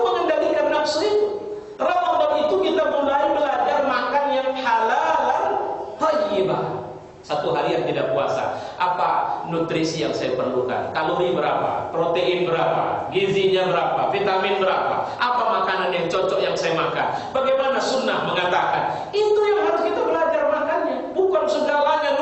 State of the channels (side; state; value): both; identical; correlation 1.00